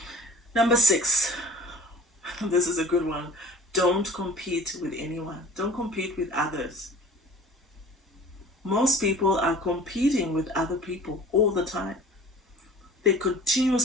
Number 6, this is a good one. Don't compete with anyone. Don't compete with others. Most people are competing with other people all the time. They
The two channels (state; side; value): normal; both; correlation 0.45